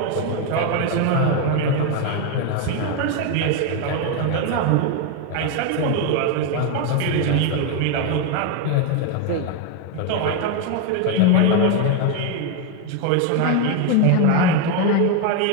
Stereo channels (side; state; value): both; different; correlation 0.01